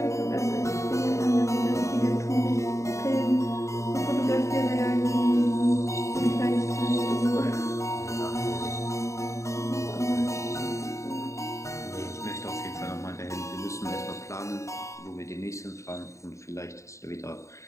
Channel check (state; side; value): late; right; 0.14 ms